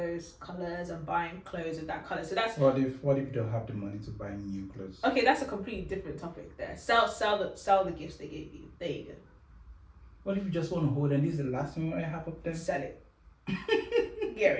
colors and buying clothes with that color. So that's what if you don't have the money to buy new clothes? Okay, that's a completely different topic there. Sell the gifts they gave you. There you go. What if you just want to hold and this is the last thing I have up there? Sell it. Get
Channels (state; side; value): identical; both; correlation 1.00